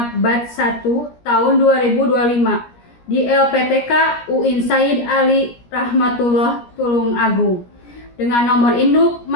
Batch 1 tahun 2025 di LPTK UIN Said Ali Rahmatullah Tulung Agung dengan nomor induk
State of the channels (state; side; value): late; right; 17 ms